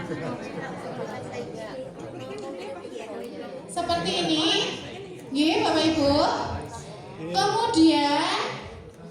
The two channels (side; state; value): both; identical; correlation 1.00